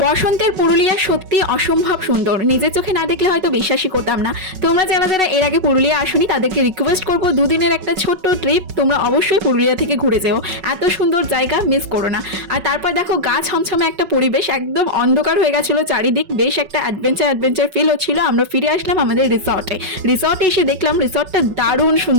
বসন্তের পুরুলিয়া সত্যি অসম্ভব সুন্দর, নিজের চোখে না দেখলে হয়তো বিশ্বাসই করতাম না। তোমরা যারা যারা এর আগে পুরুলিয়া আসনি তাদেরকে রিকোয়েস্ট করবো দুদিনের একটা ছোট্ট ট্রিপ তোমরা অবশ্যই পুরুলিয়া থেকে ঘুরে যেও, এত সুন্দর জায়গা মিস করো না। আর তারপর দেখো গা ছমছমে একটা পরিবেশ, একদম অন্ধকার হয়ে গেছিল চারিদিক, বেশ একটা অ্যাডভেঞ্চার ফিল হচ্ছিল। আমরা ফিরে আসলাম আমাদের রিসর্টে এসে দেখলাম রিসর্টটা দারুণ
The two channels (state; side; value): late; left; 5.3 ms